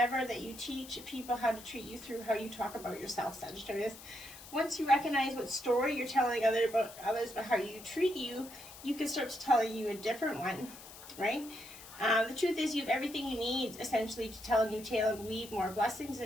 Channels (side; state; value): left; noise; hiss, 16 dB below the sound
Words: that you teach people how to treat you through how you talk about yourself, Sagittarius. Once you recognize what story you're telling others about how you treat you, you can start to tell you a different one, right? The truth is you have everything you need, essentially, to tell a new tale and weave more blessings